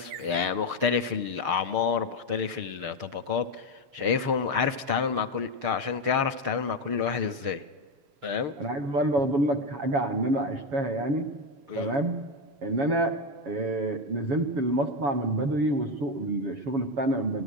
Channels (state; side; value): late; left; 6.6 ms